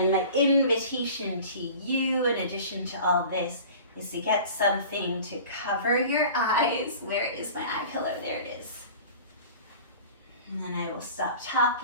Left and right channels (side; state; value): both; inverted; correlation -0.41